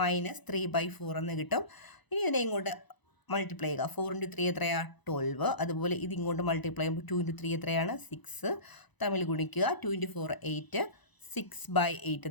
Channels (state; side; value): late; right; 1.0 ms